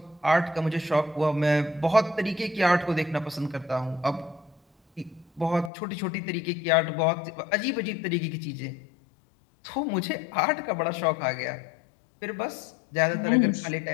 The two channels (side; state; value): right; drops out; at 5.7 s